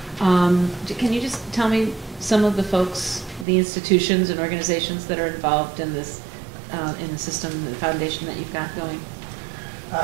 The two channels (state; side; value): drops out; left; at 3.5 s